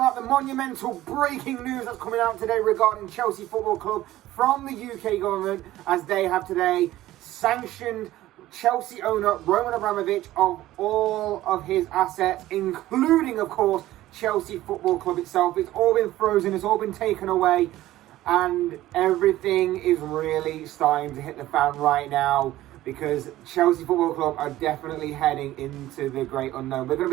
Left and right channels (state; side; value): quieter; left; 15.3 dB